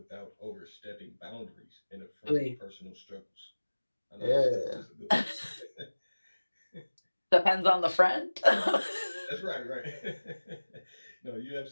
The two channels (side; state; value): both; inverted; correlation -1.00